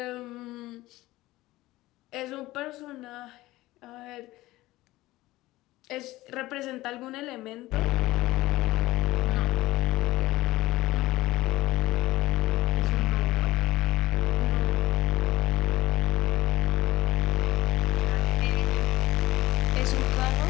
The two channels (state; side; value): quieter; right; 17.9 dB